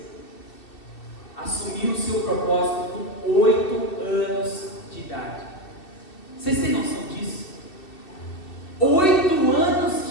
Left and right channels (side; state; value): right; late; 2.7 ms